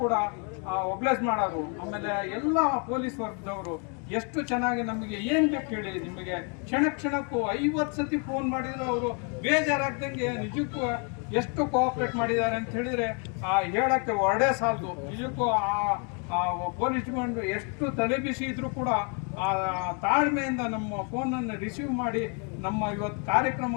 ಕೂಡ ಒಬ್ಲೈಸ್ ಮಾಡೋರು. ಆಮೇಲೆ ಎಲ್ಲ ಪೊಲೀಸ್ ವರ್ಗದವರು ಎಷ್ಟು ಚೆನ್ನಾಗಿ ನಮಗೆ ಏನು ಬೇಕು ಹೇಳಿ, ನಿಮಗೆ ಕ್ಷಣಕ್ಕೂ 50 ಸತಿ ಫೋನ್ ಮಾಡಿದ್ರು ಅವರು ಬೇಜಾರಾಗ್ದಂಗೆ ನಿಜಕ್ಕೂ ಎಷ್ಟು ಕೋಆಪ್ರೇಟ್ ಮಾಡಿದ್ದಾರೆ ಅಂತ ಹೇಳಿದ್ರೆ ಹೇಳಕ್ಕೆ ಹೊರಡೇ ಸಾಲದು. ನಿಜಕ್ಕೂ ಪೊಲೀಸ್ ಡಿಪಾರ್ಟ್ಮೆಂಟ್ ಎಷ್ಟು ತಲೆಬಿಸಿ ಇದ್ರೂ ಕೂಡ ತಾಳ್ಮೆಯಿಂದ ನಮ್ಮ ಫೋನನ್ನು ರಿಸೀವ್ ಮಾಡಿ ನಮ್ಮ ಇವತ್ತು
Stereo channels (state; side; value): quieter; right; 37.6 dB